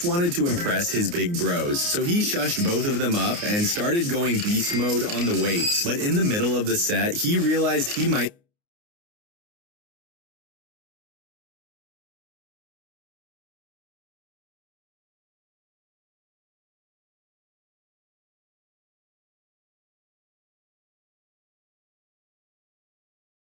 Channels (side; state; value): left; late; 29 ms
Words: wanted to impress his big bros. So he shushed both of them up and started going beast mode on the weights. But in the middle of the set, he realized he might